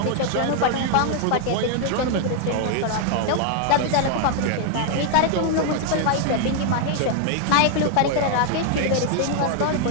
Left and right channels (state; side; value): different; both; correlation 0.00